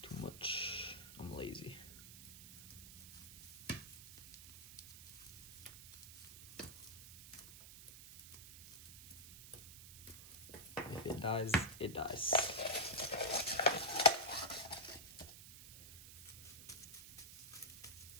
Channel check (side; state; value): right; noise; hiss, 14 dB below the sound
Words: much. I'm lazy. If it dies, it dies.